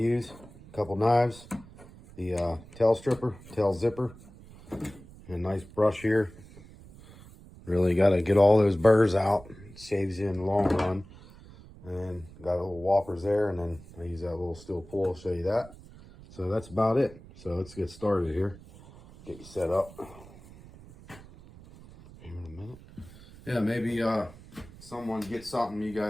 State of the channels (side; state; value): right; noise; rumble, 20 dB below the sound